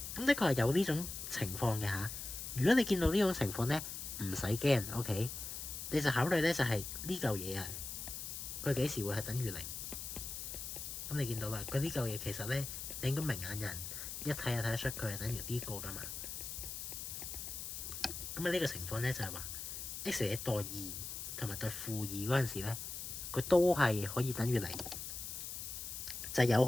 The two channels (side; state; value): left; noise; hiss, 7 dB below the sound